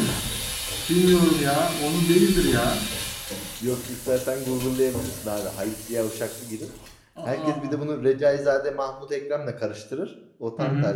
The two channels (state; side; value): identical; both; correlation 1.00